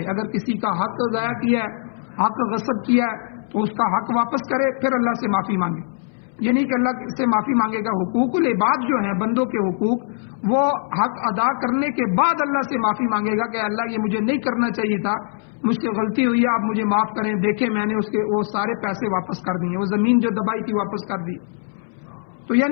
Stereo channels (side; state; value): right; silent; 64 dB below the other